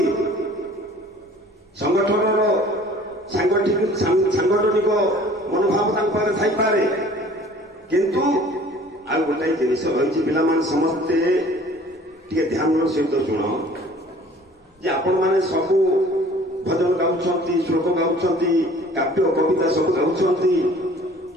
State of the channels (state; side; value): normal; both; correlation 0.50